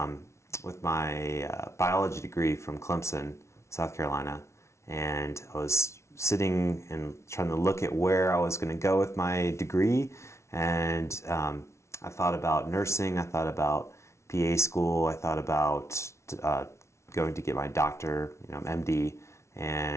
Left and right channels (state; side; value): late; right; 0.13 ms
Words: with my biology degree from Clemson, South Carolina. And I was sitting and trying to look at where I was going to go with my degree. And I thought about nursing, I thought about PA school, I thought about going to get my doctor, MD,